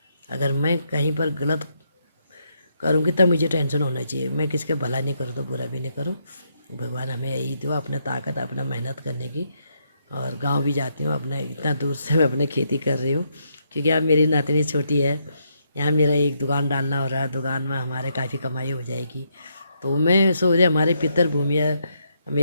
अगर मैं कहीं पर गलत करूँगी तब मुझे टेंशन होना चाहिए। मैं किसके भला नहीं करूँ तो बुरा भी नहीं करूँ। भगवान हमें यही दो, अपना ताकत, अपना मेहनत करने की। और गांव भी जाती हूँ, अपने इतना दूर से मैं अपने खेती कर रही हूँ, क्योंकि अब मेरी नातनी छोटी है। यहाँ मेरा एक दुकान डालना हो रहा है, दुकान में हमारे काफ़ी कमाई हो जाएगी। तो मैं सोच रही, हमारे पितर भूमि है,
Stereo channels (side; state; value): both; inverted; correlation -0.77